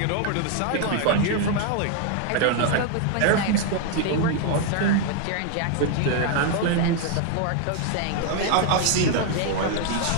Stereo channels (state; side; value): different; both; correlation 0.00